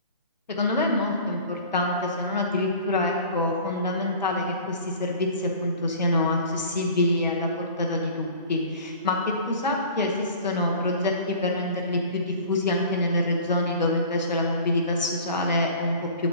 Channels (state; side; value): inverted; both; correlation -0.43